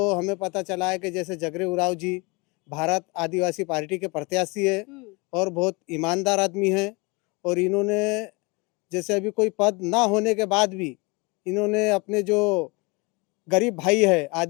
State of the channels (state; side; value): quieter; right; 27.5 dB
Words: हमें पता चला है कि जैसे जगरे उरांव जी भारत आदिवासी पार्टी के प्रत्याशी है और बहुत ईमानदार आदमी है, और इन्होंने जैसे अभी कोई पद ना होने के बाद भी इन्होंने अपने जो गरीब भाई है,